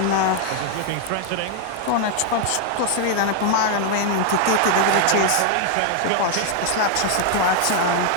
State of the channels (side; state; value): both; different; correlation 0.00